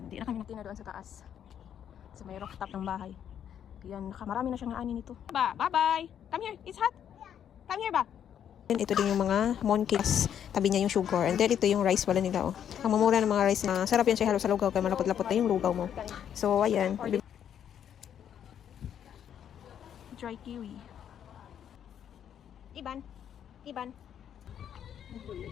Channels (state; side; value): quieter; right; 9.3 dB